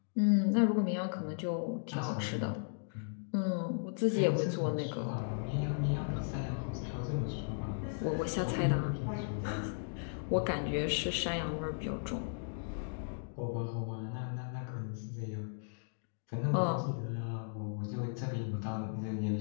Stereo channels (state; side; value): silent; right; digital silence